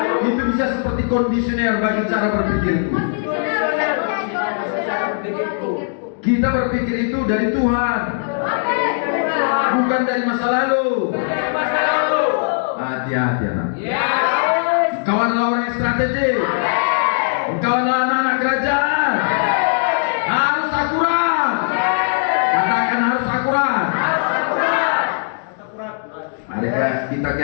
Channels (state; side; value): silent; right; digital silence